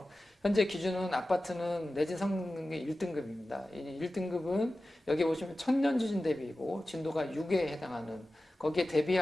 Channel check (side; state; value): both; normal; correlation 0.95